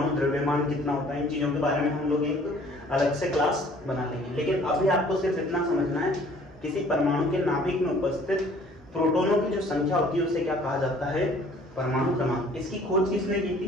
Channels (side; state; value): both; normal; correlation 0.55